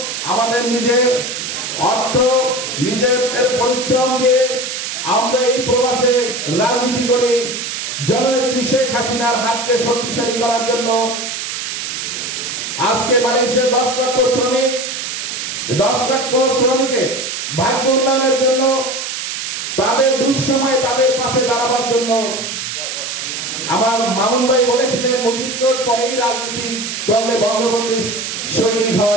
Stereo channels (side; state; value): right; noise; hiss, 5 dB below the sound